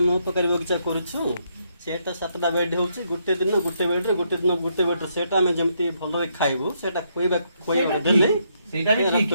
mo pakari bogcha koruchu सेटा 7टा बेड होउची गुटे दिन गुटे बेड रे गुटे दिन गुटे बेड सेटा हम जेमती भलो रे खाइबो सेटा खोइबा देले सेटा भी ठीक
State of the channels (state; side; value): inverted; both; correlation -0.75